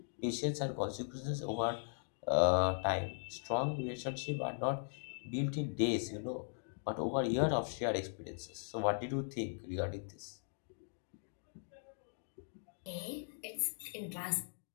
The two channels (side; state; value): right; silent; digital silence